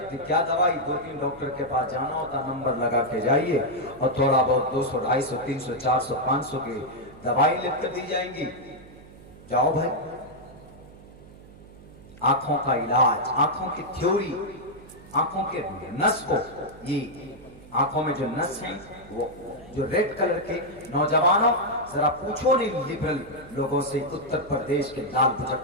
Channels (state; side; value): noise; right; hum, 20 dB below the sound